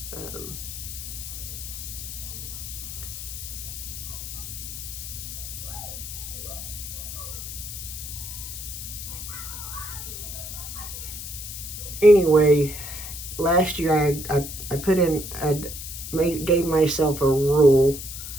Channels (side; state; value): left; noise; hiss, 8 dB below the sound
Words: Anyway, last year I put in, gave myself a rule